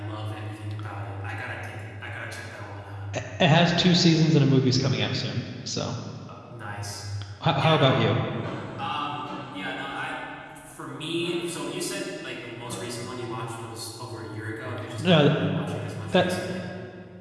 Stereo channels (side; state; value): both; identical; correlation 1.00